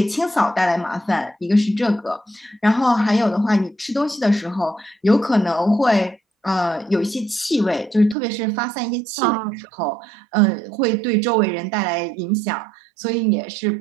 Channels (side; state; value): left; drops out; at 8.2 s